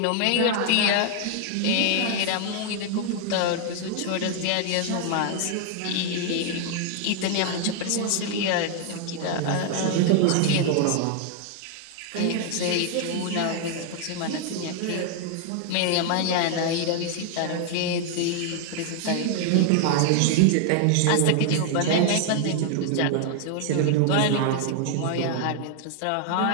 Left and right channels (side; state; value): both; different; correlation 0.00